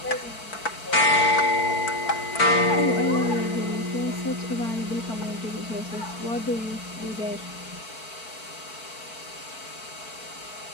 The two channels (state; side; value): late; right; 4.5 ms